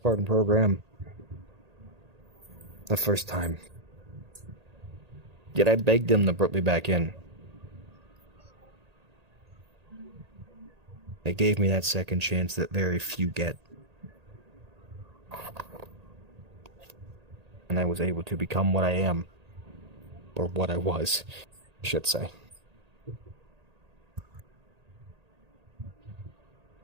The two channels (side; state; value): left; late; 1.8 ms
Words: program the first time. Yet I begged them to put me back in. They gave me that second chance that very few get. And I was able to become what I am. Or what I was, I should say.